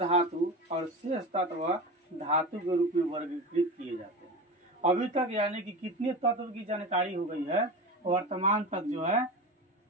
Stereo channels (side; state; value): both; normal; correlation 0.27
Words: और शेष तत्व धातु के रूप में वर्गीकृत किए जाते हैं। अभी तक यानी कि कितने तत्व की जानकारी हो गई है वर्तमान तक जो है,